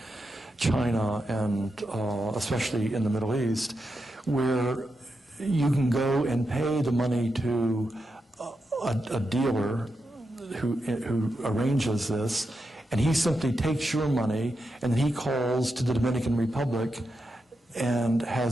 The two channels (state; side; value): normal; both; correlation 0.87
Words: China and especially in the Middle East, where you can go and pay the money to a dealer who arranges this, and he simply takes your money and then he calls to the Dominican Republic and